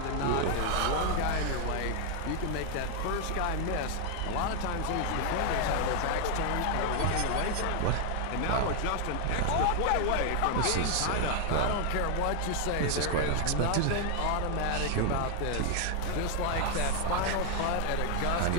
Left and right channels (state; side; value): different; both; correlation 0.00